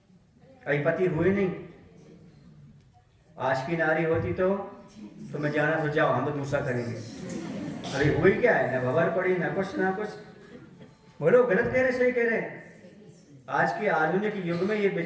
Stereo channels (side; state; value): both; identical; correlation 1.00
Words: अभी पति हुए नहीं? आज की नारी होती तो मैं जाना तो जाओ, हम तो दूसरा करेंगे। अरे हुई क्या है, ना भवर पड़ी, ना कुछ ना कुछ। बोलो गलत कह रहे सही कह रहे? आज के आधुनिक युग में ये